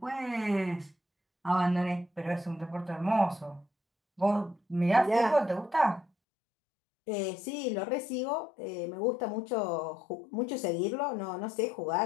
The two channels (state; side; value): drops out; right; at 6.1 s